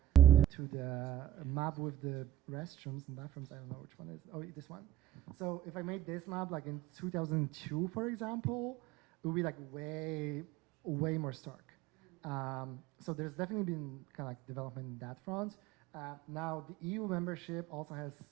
to the map with the restrooms and bathrooms, I don't know which one is. Oh, this one. So if I made this map like in 2002, for example, it would be like way more stark. So there's definitely been kind of like development in that front. Now the EU membership also has,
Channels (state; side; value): quieter; left; 12.4 dB